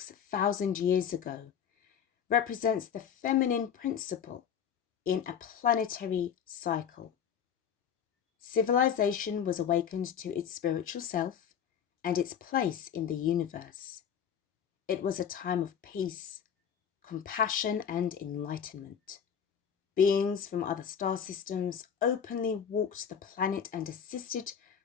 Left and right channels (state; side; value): quieter; right; 8.1 dB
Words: years ago, represents the feminine principle in a planetary cycle. Civilization was awakened to its spiritual self and its place in the universe. It was a time of peace, compassion, and enlightenment. Beings from other star systems openly walked the planet and assisted